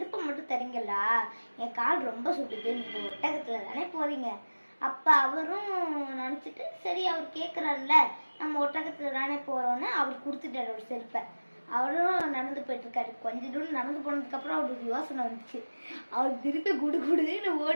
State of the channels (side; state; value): both; inverted; correlation -1.00